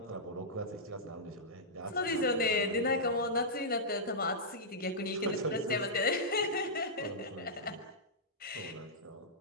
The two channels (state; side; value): normal; both; correlation -0.13